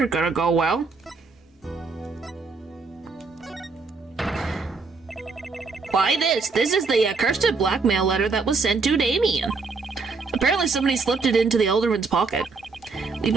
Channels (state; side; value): quieter; left; 4.4 dB